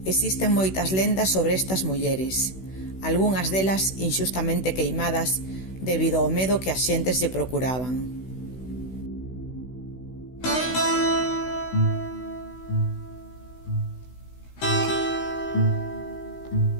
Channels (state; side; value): late; right; 16 ms